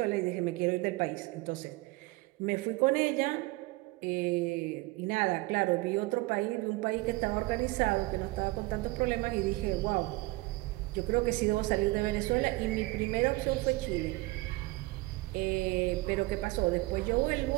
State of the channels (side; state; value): left; quieter; 21.7 dB